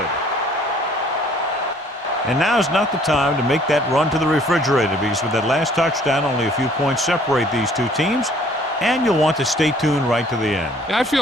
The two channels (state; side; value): normal; both; correlation 0.58